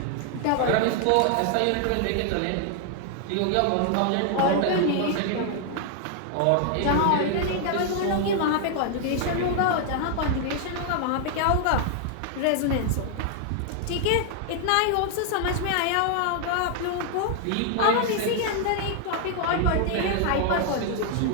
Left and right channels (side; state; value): both; different; correlation 0.00